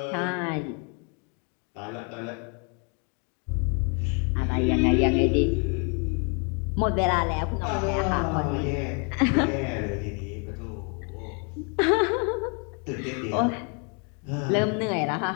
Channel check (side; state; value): right; quieter; 37.1 dB